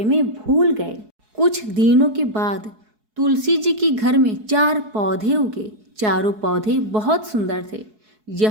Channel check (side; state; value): left; late; 4.7 ms